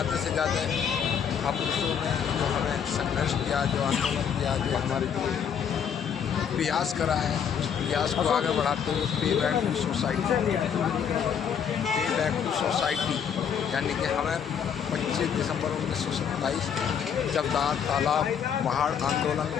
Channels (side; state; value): right; quieter; 7.8 dB